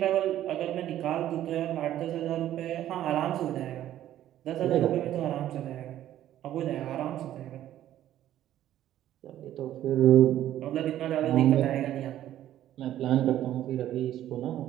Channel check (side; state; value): left; quieter; 12.4 dB